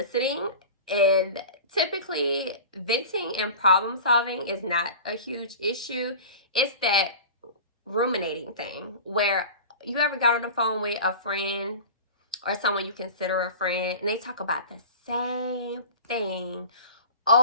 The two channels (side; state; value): both; inverted; correlation -0.36